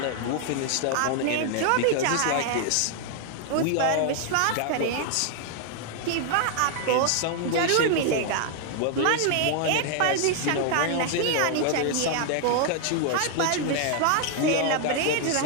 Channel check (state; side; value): different; both; correlation 0.00